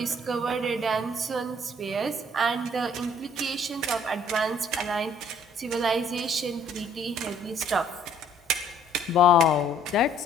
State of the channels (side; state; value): both; normal; correlation 0.60